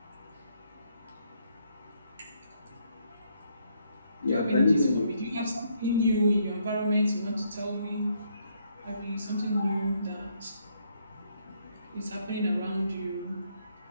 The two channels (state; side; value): inverted; both; correlation -0.72